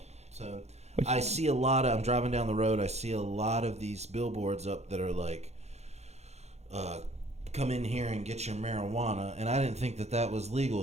So I see I'm driving down the road, I see a lot of these billboards up that are like, come in here and get your marijuana, and I didn't think that was legal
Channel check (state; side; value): late; left; 0.32 ms